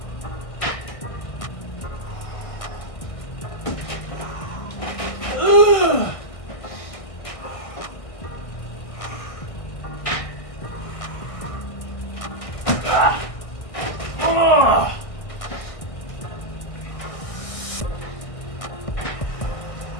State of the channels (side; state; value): right; late; 1.6 ms